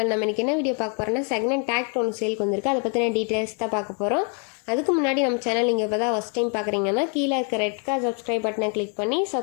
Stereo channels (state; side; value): quieter; right; 38.3 dB